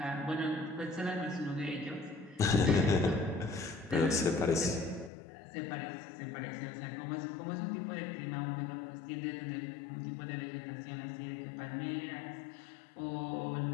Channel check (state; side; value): drops out; right; at 5.1 s